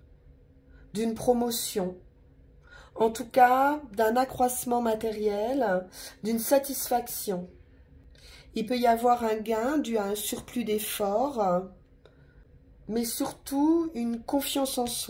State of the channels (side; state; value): both; identical; correlation 1.00